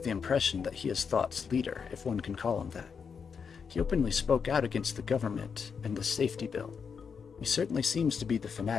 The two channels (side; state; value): right; quieter; 6.2 dB